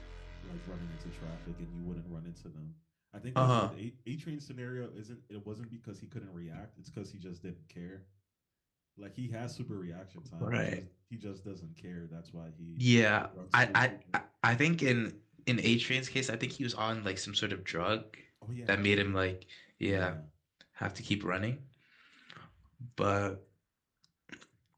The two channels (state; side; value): identical; both; correlation 1.00